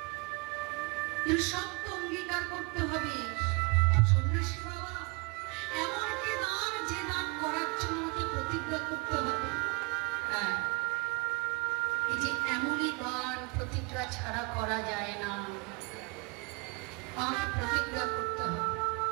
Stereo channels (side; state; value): left; quieter; 29.2 dB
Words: শব্দ অঙ্গীকার করতে হবে। সন্ন্যাসী বাবা, এমন কি দান যে দান করার জন্য আমাকে প্রতিজ্ঞা করতে হবে? হ্যাঁ, এই যে এমনই দান প্রতিজ্ঞা ছাড়া করা যায় না, আমাকে প্রতিজ্ঞা করতে হবে।